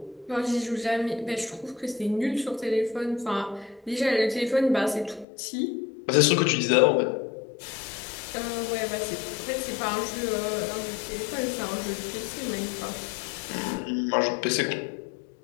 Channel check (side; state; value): right; drops out; at 5.2 s